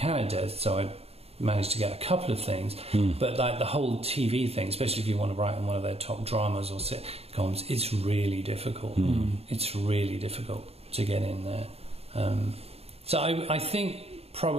so I managed to get a couple of things, but like the whole TV thing, especially if you want to write on one of their top dramas or sitcoms, it's really difficult. It's really difficult to get in there. So I think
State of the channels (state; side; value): late; left; 0.29 ms